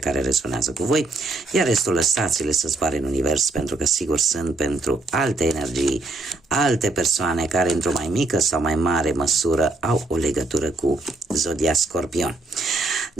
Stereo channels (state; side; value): quieter; left; 3.2 dB